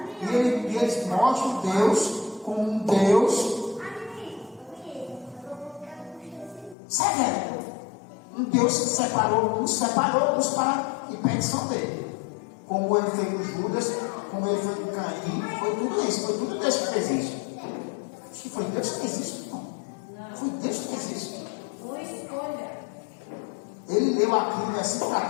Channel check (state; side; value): drops out; right; at 6.8 s